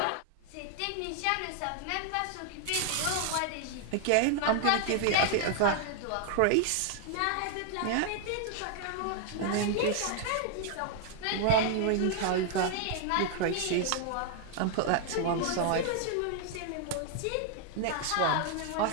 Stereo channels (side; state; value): both; different; correlation 0.00